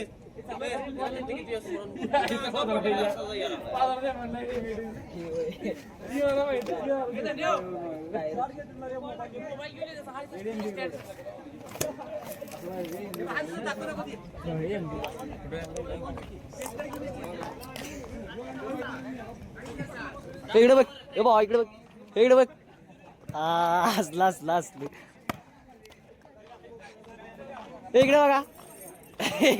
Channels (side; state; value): both; identical; correlation 1.00